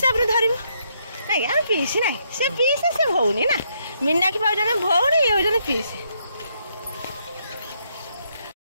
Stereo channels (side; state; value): both; inverted; correlation -0.74